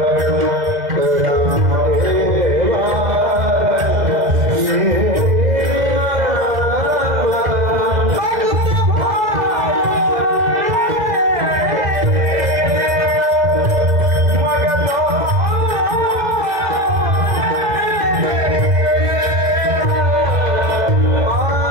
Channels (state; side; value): late; left; 2.0 ms